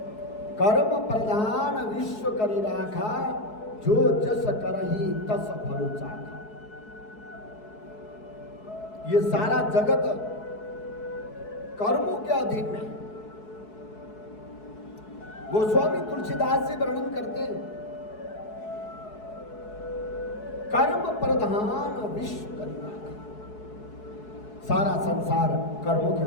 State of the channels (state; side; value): late; right; 4.7 ms